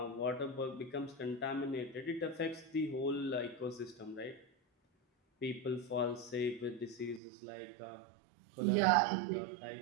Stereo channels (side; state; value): left; drops out; at 7.2 s